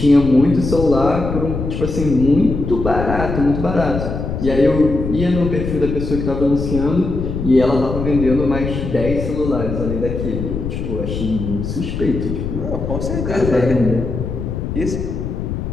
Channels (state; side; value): noise; left; rumble, 4 dB below the sound